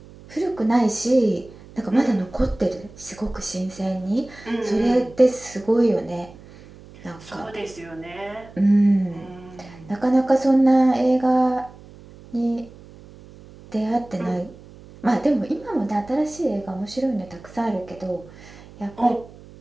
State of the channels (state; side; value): noise; right; hum, 20 dB below the sound